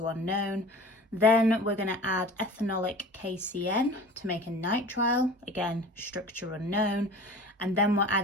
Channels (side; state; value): both; normal; correlation 0.40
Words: unknown. Then we're going to add ethanolic KCN to make a nitrile, again structure unknown. And then we're